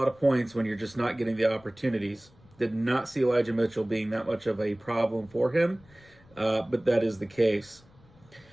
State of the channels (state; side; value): noise; left; rumble, 28 dB below the sound